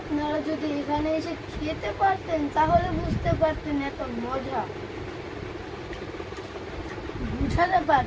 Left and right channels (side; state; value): both; identical; correlation 1.00